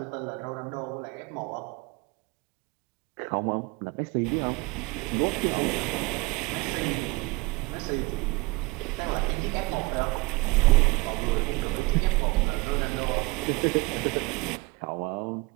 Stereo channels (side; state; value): left; quieter; 24.5 dB